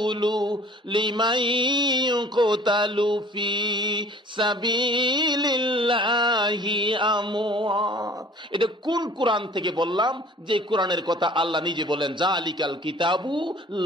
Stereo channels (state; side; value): normal; both; correlation 0.50